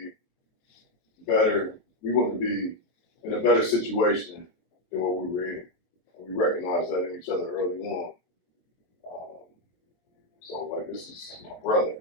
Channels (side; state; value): right; late; 23 ms